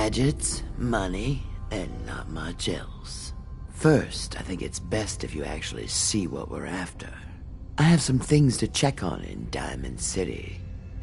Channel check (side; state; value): both; identical; correlation 1.00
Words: money, and not much else. First, I think it's best if you actually see what we're after. I have some things to check on in Diamond City.